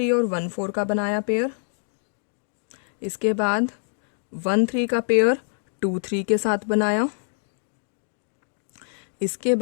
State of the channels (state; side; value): silent; right; digital silence